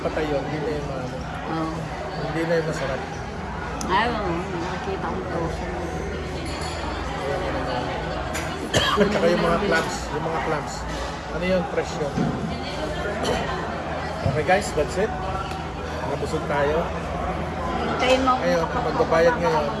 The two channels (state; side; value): identical; both; correlation 1.00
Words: patay yun, hindi na yung Oh. hindi na yung masarap. Ayaw, nakikita kong frozen. At saka yung mga clams. Ano yun? Fresh yun. Okay guys, that's it. Nabusog tayo. Hintayin mo Ngayon, ako magbabayad ngayon.